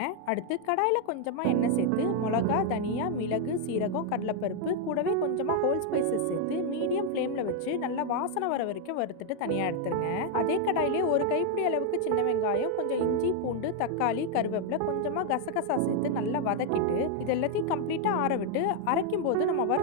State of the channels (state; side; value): different; both; correlation 0.00